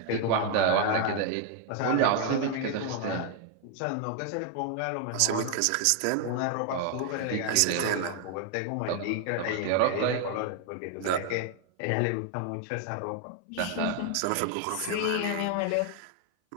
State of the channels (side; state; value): both; different; correlation 0.00